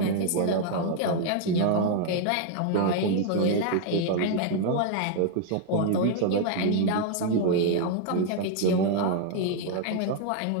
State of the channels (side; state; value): both; different; correlation 0.00